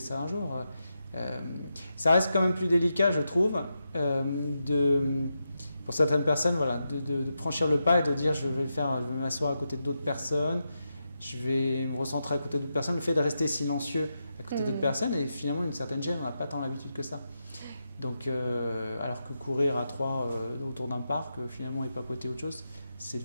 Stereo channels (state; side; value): inverted; both; correlation -0.87